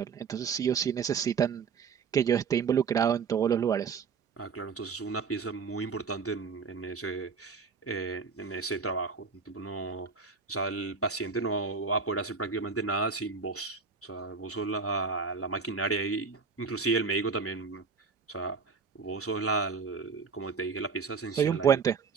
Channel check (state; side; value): quieter; left; 5.4 dB